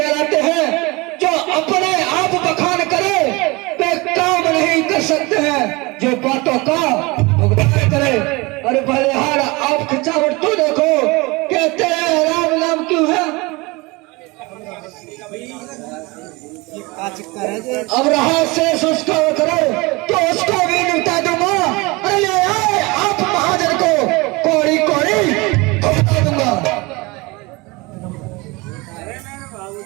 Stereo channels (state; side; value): quieter; left; 24.6 dB